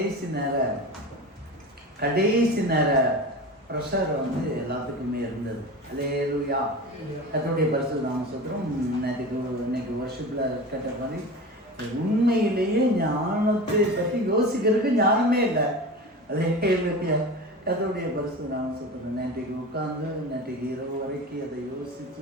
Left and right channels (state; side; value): normal; both; correlation 0.31